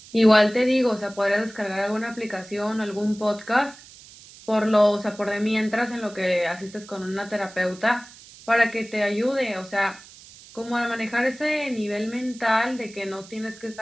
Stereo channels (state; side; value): noise; right; hiss, 20 dB below the sound